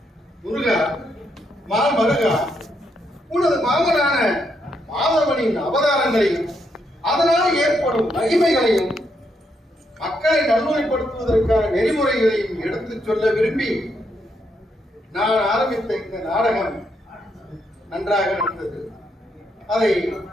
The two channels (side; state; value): both; normal; correlation 0.78